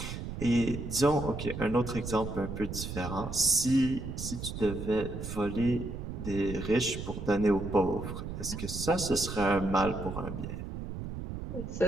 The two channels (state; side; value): noise; right; rumble, 7 dB below the sound